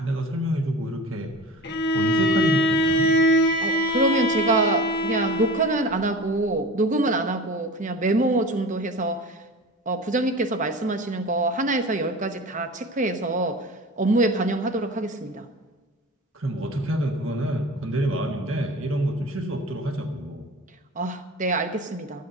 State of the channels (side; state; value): both; normal; correlation 0.35